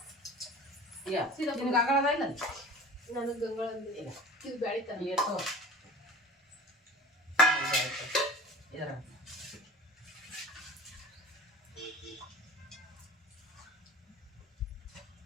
ಯಾ ನಿನಗೆ ಅಂಗಳದ ಇಲ್ಲ ನನಗೆ ಗಂಗಳ ಇದು ಬೆಳಿತಾನೆ ಏಟೋ ಇದರ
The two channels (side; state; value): both; normal; correlation 0.39